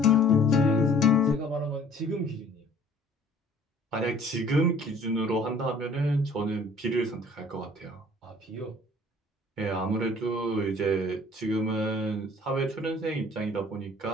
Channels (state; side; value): normal; both; correlation 0.53